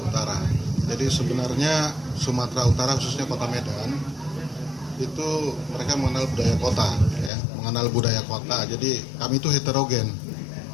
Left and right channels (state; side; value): drops out; right; at 7.3 s